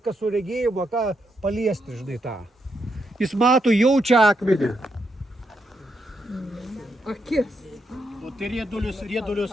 kas su regėjimu, ką paliesti, žinai, tą. Jis mato, jaučia akmenį. Akis. O tai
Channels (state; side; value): normal; both; correlation 0.80